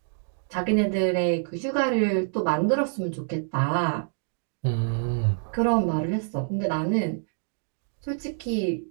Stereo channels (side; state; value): left; silent; digital silence